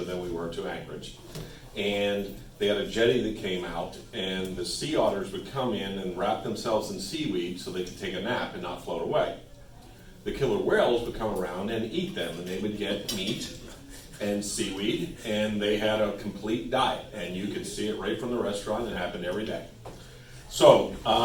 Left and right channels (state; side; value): identical; both; correlation 1.00